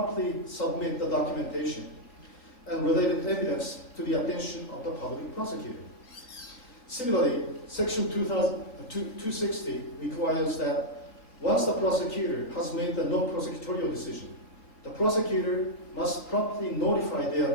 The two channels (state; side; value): late; right; 3.9 ms